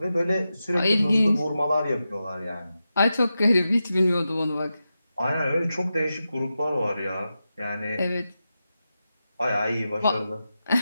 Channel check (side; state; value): both; inverted; correlation -0.91